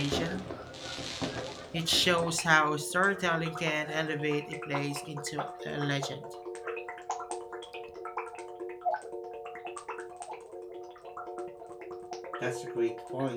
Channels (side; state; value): both; identical; correlation 1.00